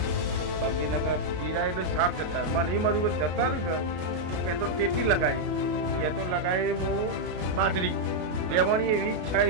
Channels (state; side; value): late; left; 33 ms